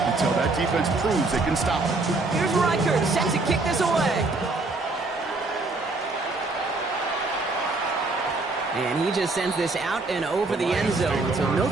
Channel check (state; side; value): quieter; left; 3.4 dB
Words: until that defense proves they can stop it. Here's Reichert, set to kick this away. And he just sends this out and over the end zone. So no